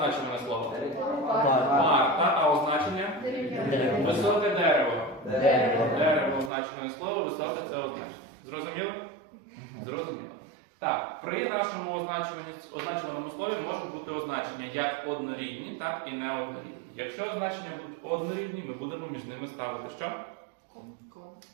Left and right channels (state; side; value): drops out; left; at 6.5 s